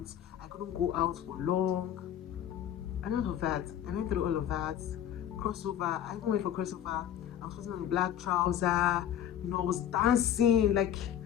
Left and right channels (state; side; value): quieter; right; 10.3 dB